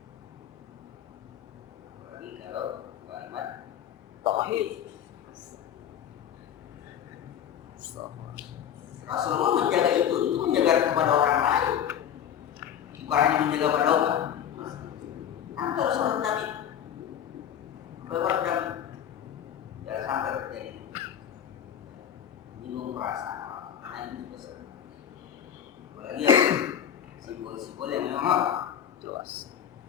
Apalagi kalau kalimat tauhid. Rasulullah menjaga itu menjaga kepada orang lain, bukan hanya menjaga pada umat. Nanti Rasulullah Nabi berwarna jangan sampai terjadi menyinggung perasaan orang lain besar. Apalagi simbol-simbol yang memang Jelas.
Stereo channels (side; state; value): right; quieter; 9.5 dB